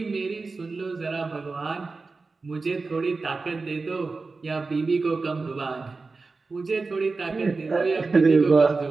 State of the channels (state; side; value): quieter; left; 4.0 dB